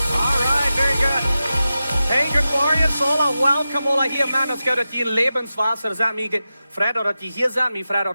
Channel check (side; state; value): both; inverted; correlation -0.92